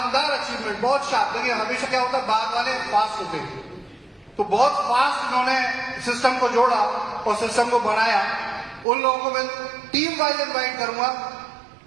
अचीवमेंट, बहुत शार्प। देखिए हमेशा क्या होता है, बाद वाले फास्ट होते हैं, तो बहुत फास्ट इन्होंने सिस्टम को जोड़ा और सिस्टम को बनाया। उन लोगों को मैं टीम वाइज इनवाइट करूंगा,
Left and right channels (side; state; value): left; drops out; at 8.8 s